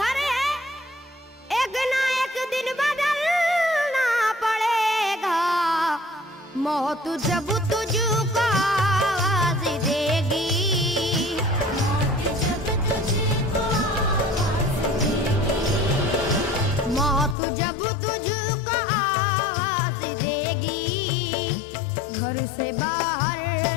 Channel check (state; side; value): drops out; right; at 17.4 s